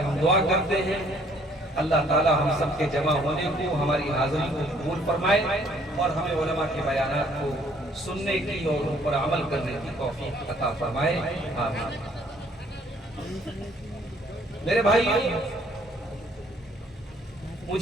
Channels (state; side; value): normal; both; correlation 0.61